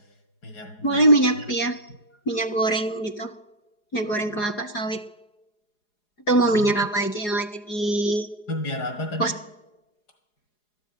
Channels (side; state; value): right; late; 4.8 ms